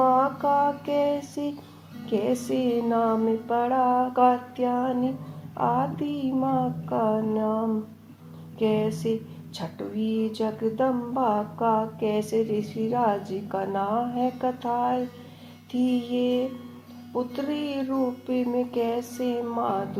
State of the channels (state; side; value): identical; both; correlation 1.00